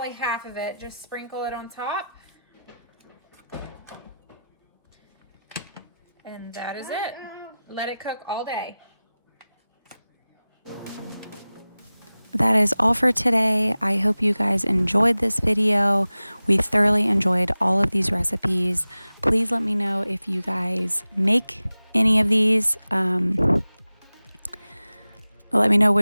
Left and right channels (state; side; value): inverted; both; correlation -0.96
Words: half of it. Just sprinkle it on top. And that is it. Let it cook all day. That is all for today. I hope you guys enjoyed this video. We thoroughly enjoyed all of these recipes. Please let me know if you guys make any of these. Let me know